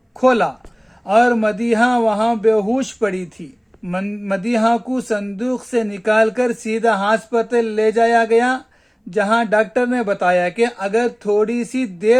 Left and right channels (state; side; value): identical; both; correlation 1.00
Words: खोला और मदीहा वहां बेहोश पड़ी थी। मदीहा को संदूक से निकालकर सीधा अस्पताल ले जाया गया, जहां डॉक्टर ने बताया कि अगर थोड़ी सी